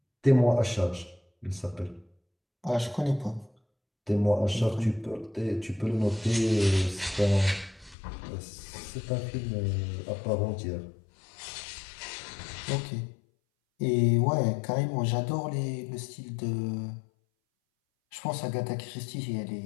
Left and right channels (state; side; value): drops out; right; at 8.0 s